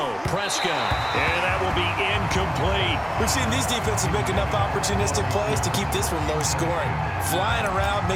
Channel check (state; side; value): identical; both; correlation 1.00